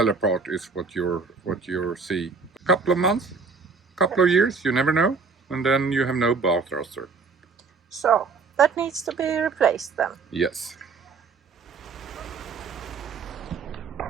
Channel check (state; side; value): quieter; left; 4.7 dB